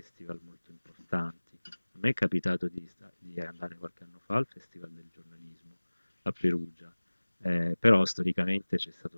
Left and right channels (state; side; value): inverted; both; correlation -1.00